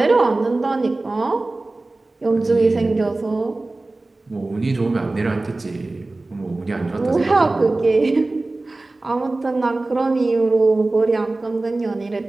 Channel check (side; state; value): left; quieter; 3.1 dB